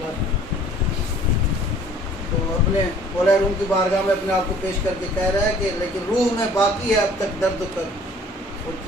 تو اپنے مولا روم کی بارگاہ میں اپنے آپ کو پیش کر کے کہہ رہا ہے کہ لیکن روح میں باقی ہے اب تک درد و کر. وہ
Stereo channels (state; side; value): normal; both; correlation 0.53